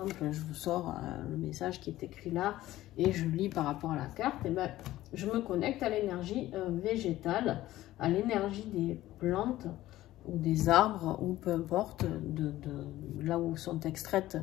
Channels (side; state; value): right; quieter; 15.4 dB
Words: je vous sors le message qui est écrit là et je lis par rapport à la carte. Et ben, je me connecte à l'énergie végétale, à l'énergie des plantes ou des arbres, ou peu importe, de là où sont extraites